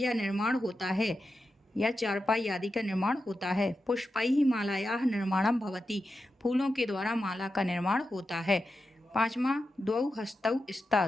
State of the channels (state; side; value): normal; both; correlation 0.90